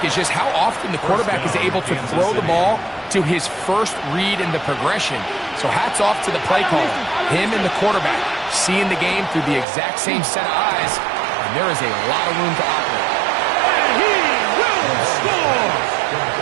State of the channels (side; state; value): left; drops out; at 9.7 s